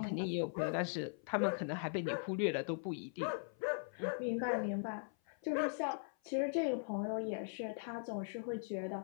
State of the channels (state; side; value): silent; right; 51 dB below the other